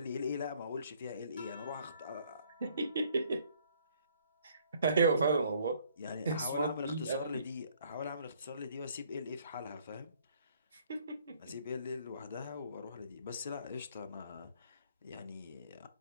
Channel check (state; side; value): inverted; both; correlation -0.62